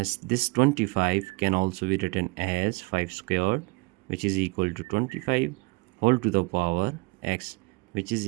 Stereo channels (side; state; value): left; quieter; 26.4 dB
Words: this 25 can also be written as 5 squared, which is equal to 25 whole to the power x, which is